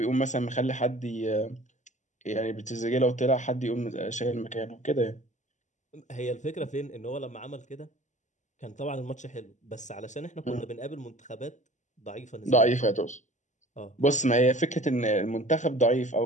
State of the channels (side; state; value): right; late; 0.35 ms